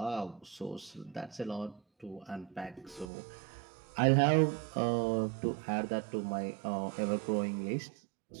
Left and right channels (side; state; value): left; drops out; at 3.1 s